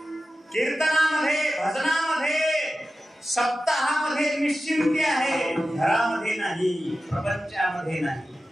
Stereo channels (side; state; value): both; normal; correlation 0.94